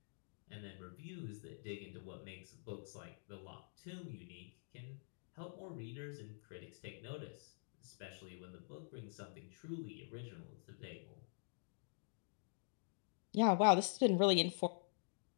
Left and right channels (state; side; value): silent; right; digital silence